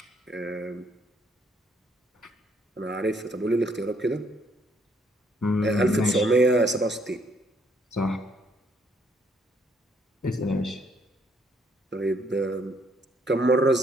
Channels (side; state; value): both; normal; correlation 0.69